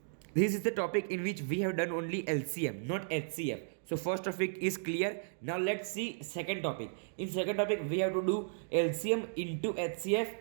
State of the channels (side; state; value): left; silent; digital silence